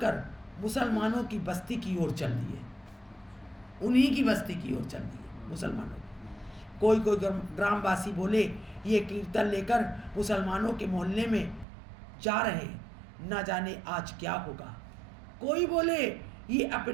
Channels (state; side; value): drops out; left; at 11.7 s